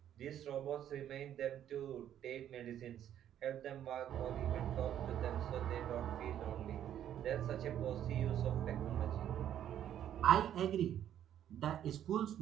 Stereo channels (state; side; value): quieter; left; 10.6 dB